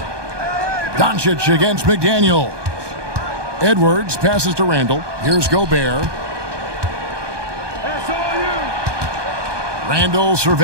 Doncic against McDaniel. Edwards passes to Randall. Here's Gobert. Randall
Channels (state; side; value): late; left; 1.2 ms